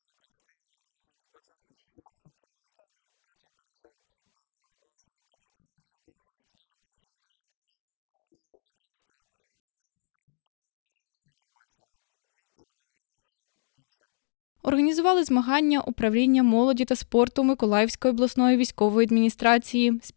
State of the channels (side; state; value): right; silent; digital silence